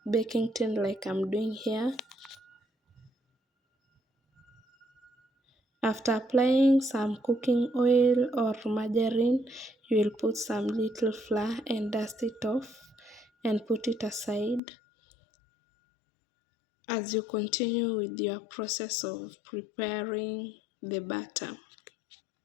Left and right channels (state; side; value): drops out; right; at 14.6 s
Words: baking tin like I'm doing here. After applying some cooking oil or margarine, you will put some little flour and dust it off and put it aside as you continue with your process of preparing the batter.